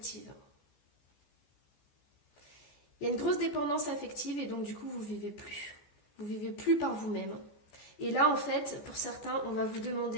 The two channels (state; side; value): late; right; 14 ms